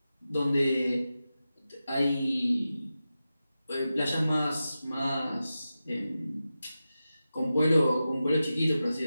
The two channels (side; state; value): both; inverted; correlation -0.92